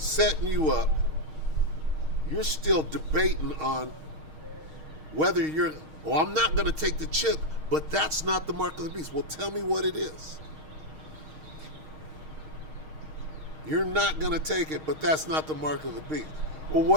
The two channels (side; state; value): left; late; 6.4 ms